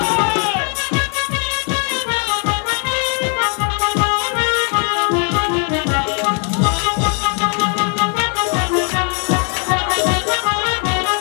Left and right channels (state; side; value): quieter; right; 39.7 dB